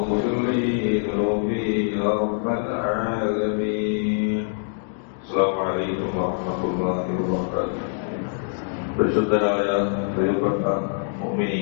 لي ذنوبي يا رب العالمين السلام عليكم ورحمة الله وبركاته പരിശുദ്ധരായ പ്രിയപ്പെട്ട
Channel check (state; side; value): silent; right; digital silence